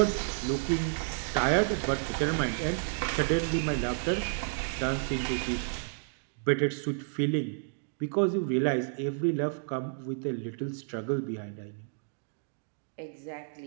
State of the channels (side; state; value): left; silent; digital silence